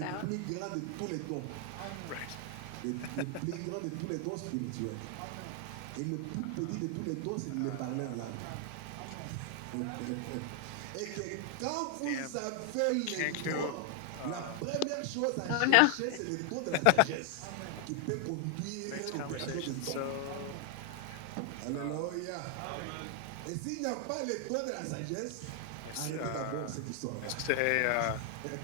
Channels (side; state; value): both; different; correlation 0.00